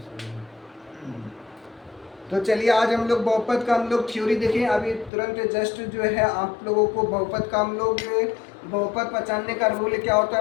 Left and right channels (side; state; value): right; drops out; at 5.1 s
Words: तो चलिए आज हम लोग बहुपद का हम लोग थ्योरी देखें। अभी तुरंत जस्ट जो है आप लोगों को बहुपद का हम लोग बहुपद पहचानने का रूल क्या होता